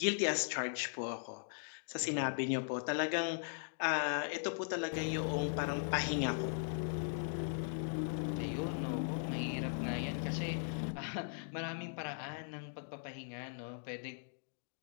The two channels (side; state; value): right; silent; digital silence